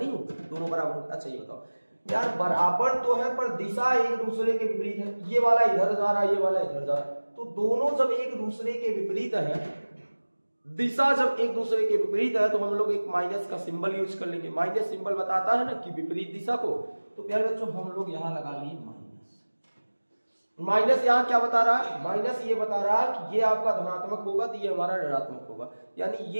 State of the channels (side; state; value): both; inverted; correlation -1.00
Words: होंगे, दोनों बराबर होंगे। अच्छा ये बताओ यार, बराबर तो है पर दिशा एक दूसरे के विपरीत है। ये वाला इधर जा रहा है, ये वाला इधर जा रहा है, तो दोनों जब एक दूसरे के विपरीत है, दिशा जब एक दूसरे के विपरीत है, तो हम लोग एक माइनस का सिंबल यूज कर लेंगे। माइनस सिंबल बताता है ना कि विपरीत दिशा को। तो प्यारे बच्चों हम लोग यहां लगा लिए माइनस। माइनस यहाँ क्या बता रहा है? माइनस ये बता रहा है कि ये आपका धनात्मक होगा तो ये हमारा ऋणात्मक होगा, यानी